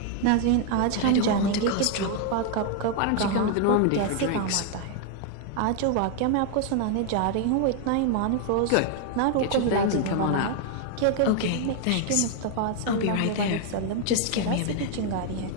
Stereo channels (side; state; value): both; different; correlation 0.00